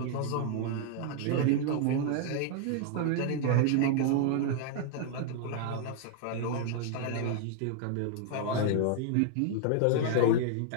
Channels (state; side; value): different; both; correlation 0.00